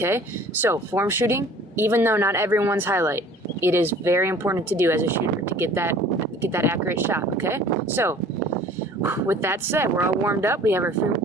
So form shooting, even though not everyone's highlight, it is very important to do as a shooter to get that accurate shot, okay? So with that said, we're all warmed up. We have our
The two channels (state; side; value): normal; both; correlation 0.49